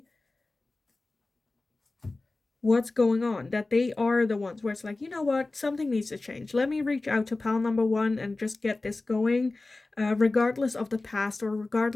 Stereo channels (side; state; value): right; quieter; 3.2 dB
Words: what's going on, that they are the ones where it's like, you know what, something needs to change. Let me reach out to pal number 1 and just get this going, regardless of the past, or